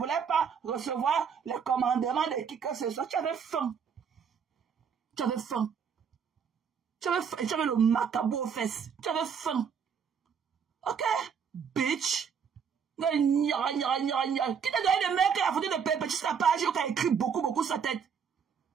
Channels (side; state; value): left; quieter; 6.9 dB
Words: pas recevoir le commandement de qui que ce soit. Tu avais faim. Tu avais faim. Tu avais le macabou aux fesses. Tu avais faim. Ok? Bitch. Qui t'a donné le mec qui a foutu de Perpétue sur la page qui a écrit beaucoup sur sa tête?